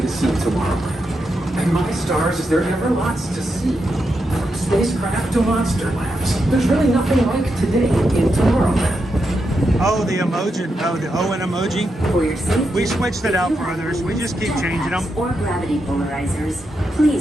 to see Tomorrowland. And my stars, is there ever lots to see? From spacecraft to monster labs, there's really nothing like today in Tomorrowland. Oh, the emoji, the Owen emoji. For your safety, we switched it out for others. We just keep changing them. or gravity polarizers.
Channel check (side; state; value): both; normal; correlation 0.85